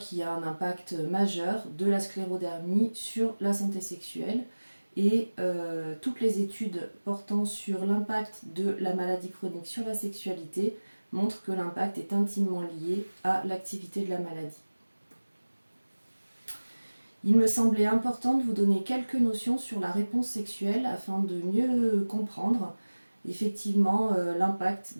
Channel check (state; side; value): inverted; both; correlation -1.00